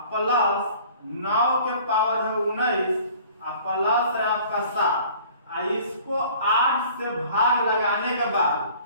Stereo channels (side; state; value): both; inverted; correlation -0.50